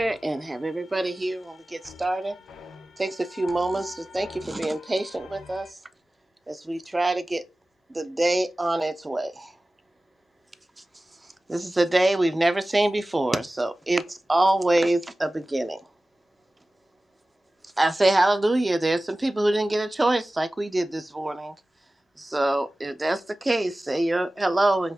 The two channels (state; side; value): normal; both; correlation 0.97